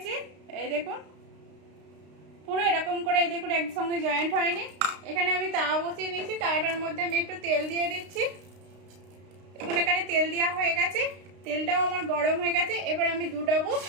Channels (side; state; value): left; late; 32 ms